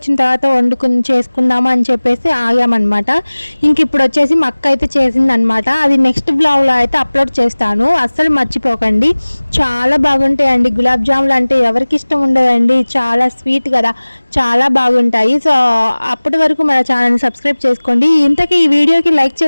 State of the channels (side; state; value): both; inverted; correlation -1.00